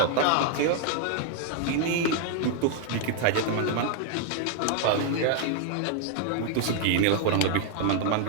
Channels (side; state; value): both; different; correlation 0.00